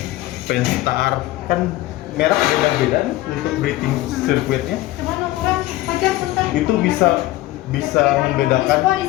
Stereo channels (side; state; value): right; quieter; 16.9 dB